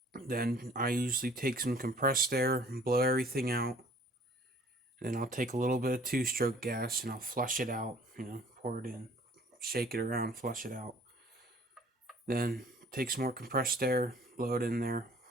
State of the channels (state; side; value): normal; both; correlation 0.54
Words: Then I usually take some compressed air and blow everything out. Then I'll take a little bit of 2-stroke gas and I'll flush it out. Pour it in, shake it around, flush it out. Then take some more compressed air, blow it in there,